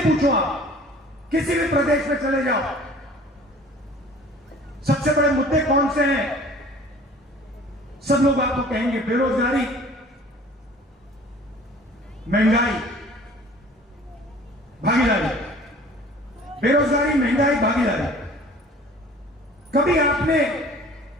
आप किसी भी प्रदेश में चले जाओ, सबसे बड़े मुद्दे कौन से हैं? सब लोग आपको कहेंगे बेरोजगारी, महंगाई, भागीदारी। बेरोजगारी, महंगाई, भागीदारी। कभी आपने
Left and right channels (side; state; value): both; normal; correlation 0.48